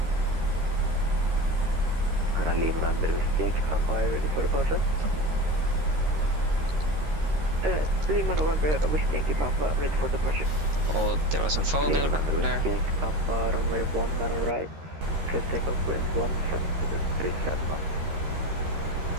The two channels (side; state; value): left; late; 13 ms